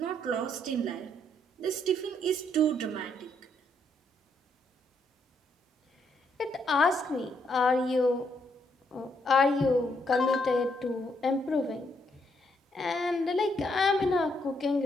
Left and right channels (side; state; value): both; normal; correlation 0.74